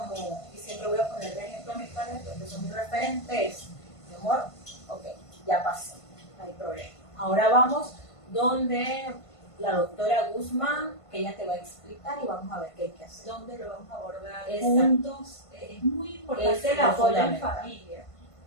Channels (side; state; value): right; late; 1.5 ms